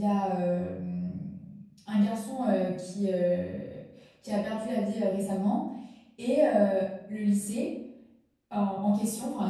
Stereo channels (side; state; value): both; identical; correlation 1.00